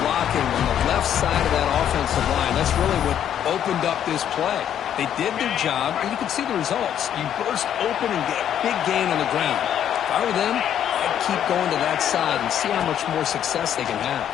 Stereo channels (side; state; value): right; quieter; 9.9 dB